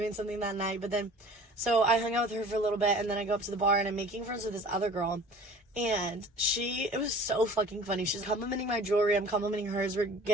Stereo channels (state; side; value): normal; both; correlation 0.45